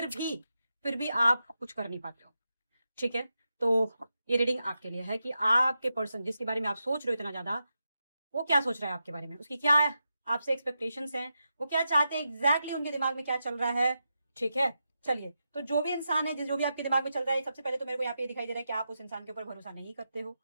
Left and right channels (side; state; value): both; inverted; correlation -0.88